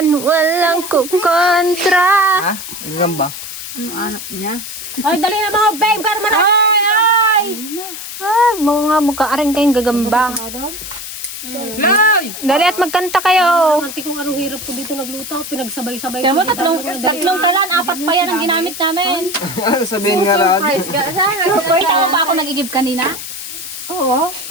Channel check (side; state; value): left; noise; hiss, 9 dB below the sound